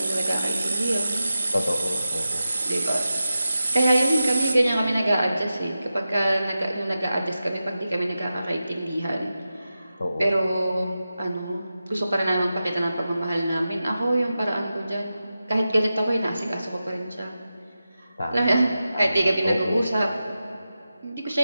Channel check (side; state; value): both; inverted; correlation -0.92